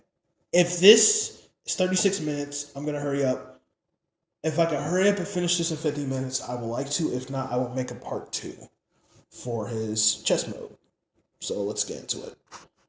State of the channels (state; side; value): identical; both; correlation 1.00